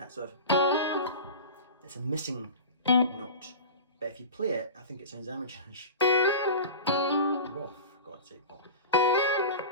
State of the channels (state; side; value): inverted; both; correlation -0.32